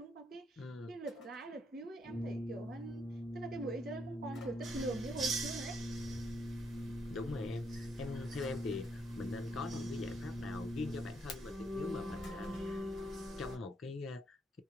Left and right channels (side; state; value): both; normal; correlation 0.74